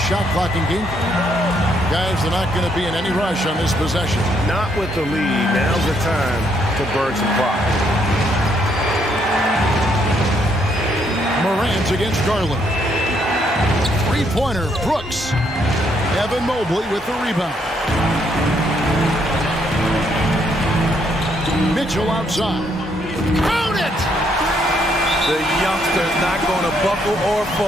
clock and game. Guys, they're not going to be in any rush on this possession. Not with the lead. Now's the time to burn some clock. Morant against Garland. 3-pointer, Brooks. Evan Mobley with the rebound. Mitchell outside. Count it! The youngster's not going to buckle or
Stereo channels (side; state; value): both; normal; correlation 0.72